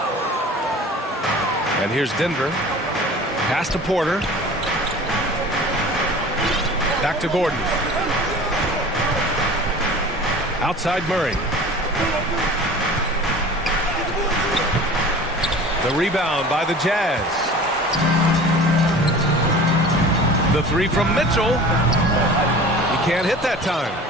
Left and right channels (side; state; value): both; normal; correlation 0.41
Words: And here's Denver. Pass to Porter. Back to Gordon. Outside Murray. The rebound by the Jazz. The three from Mitchell. He can't hit that time.